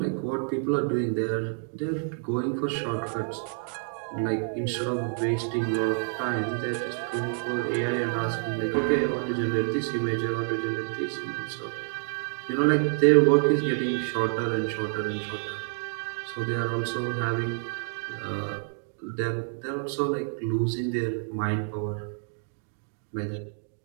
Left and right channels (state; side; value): silent; left; 57 dB below the other